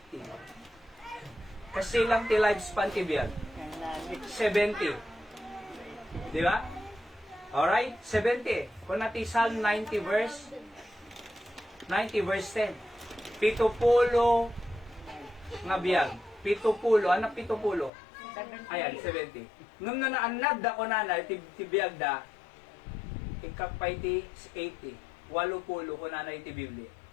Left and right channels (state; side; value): drops out; right; at 17.9 s